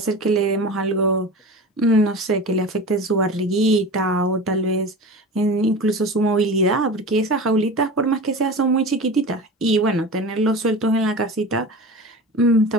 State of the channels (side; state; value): both; normal; correlation 0.32